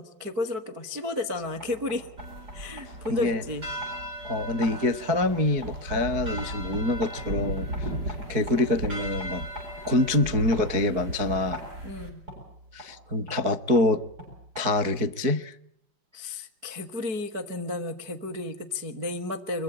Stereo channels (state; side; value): late; left; 4.6 ms